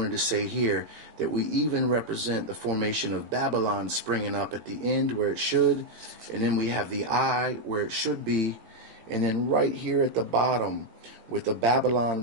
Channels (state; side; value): late; left; 18 ms